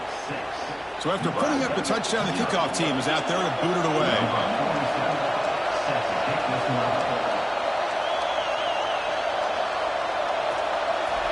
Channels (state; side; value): identical; both; correlation 1.00